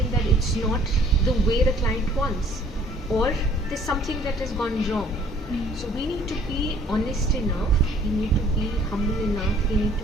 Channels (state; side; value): normal; both; correlation 0.57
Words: that it's not the way the client wants, or there's something that has gone wrong. So we need to be honest enough, we need to be humble enough, we need